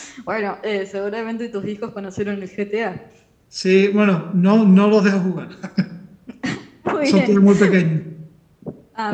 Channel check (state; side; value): identical; both; correlation 1.00